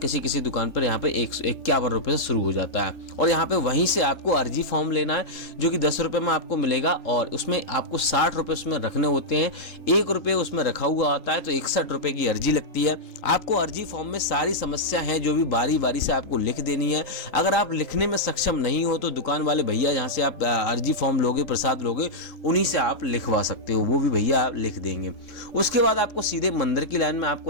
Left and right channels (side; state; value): right; late; 3.5 ms